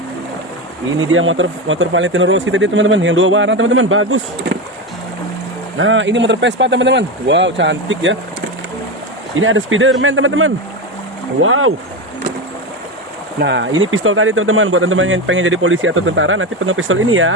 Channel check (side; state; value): both; normal; correlation 0.17